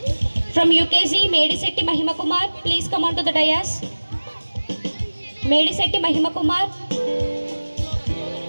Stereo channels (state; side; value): inverted; both; correlation -1.00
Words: from UKG Medisetti Mahima Kumar. Please come on to the dais. Medisetti Mahima Kumar.